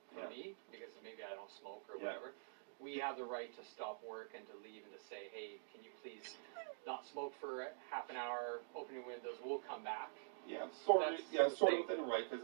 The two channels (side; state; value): left; silent; digital silence